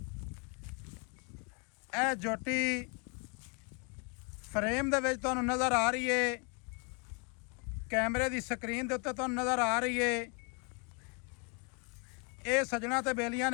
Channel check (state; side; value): quieter; right; 35.8 dB